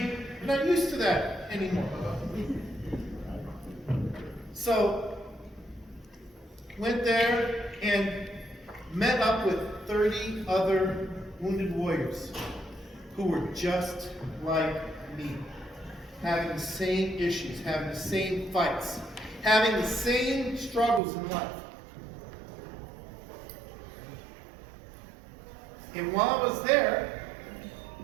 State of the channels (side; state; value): left; drops out; at 21.0 s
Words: are not used to that anymore. So, went there and met up with 30 other wounded warriors who were just like me, having the same issues, having the same fights, having the same struggles in life. And while I was there,